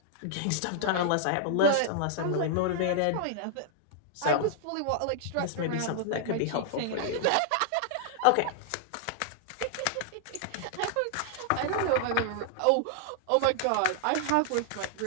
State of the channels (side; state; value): both; different; correlation -0.01